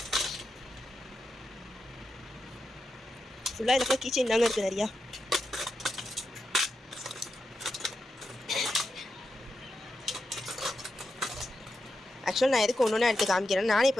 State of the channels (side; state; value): both; normal; correlation 0.87